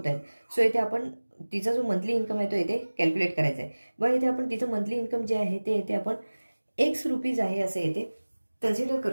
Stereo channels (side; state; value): both; inverted; correlation -1.00